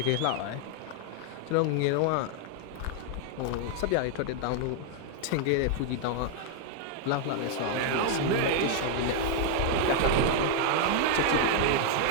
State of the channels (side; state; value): both; different; correlation 0.00